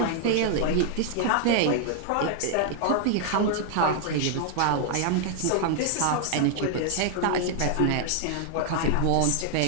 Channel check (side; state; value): both; different; correlation 0.00